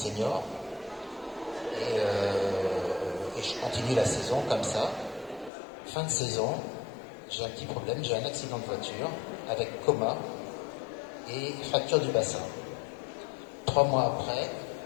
et je continue la saison comme ça. Fin de saison, j'ai un petit problème, j'ai un accident de voiture avec coma et fracture du bassin. 3 mois après,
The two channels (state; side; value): drops out; right; at 5.5 s